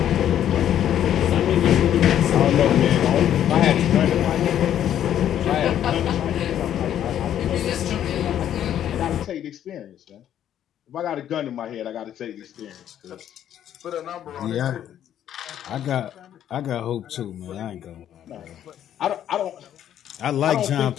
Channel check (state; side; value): quieter; right; 10.6 dB